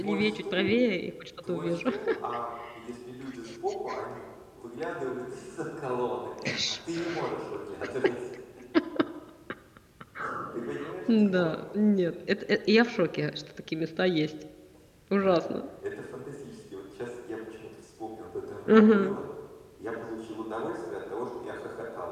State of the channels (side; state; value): both; identical; correlation 1.00